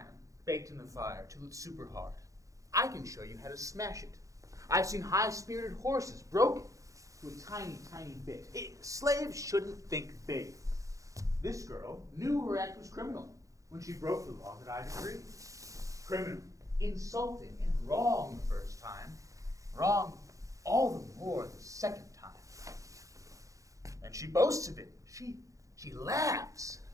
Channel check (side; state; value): left; late; 0.16 ms